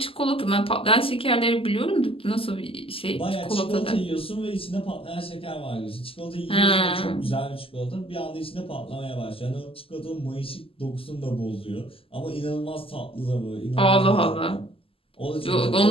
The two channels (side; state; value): right; late; 0.26 ms